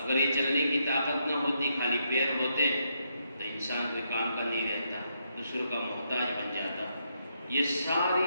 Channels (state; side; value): inverted; both; correlation -0.79